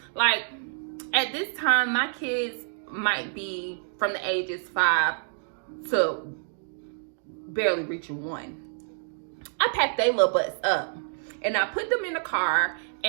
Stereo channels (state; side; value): silent; left; digital silence